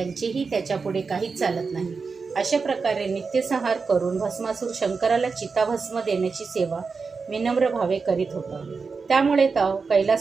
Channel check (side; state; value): left; quieter; 4.8 dB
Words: त्याच्यापुढे काहीच चालत नाही. अशा प्रकारे नित्यसंहार करून भस्मासूर शंकराला चिताभस्म देण्याची सेवा विनम्र भावे करीत होता. त्यामुळे